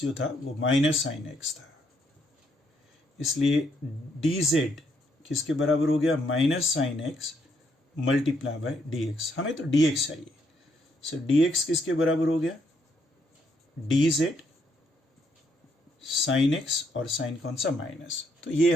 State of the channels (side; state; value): both; normal; correlation 0.73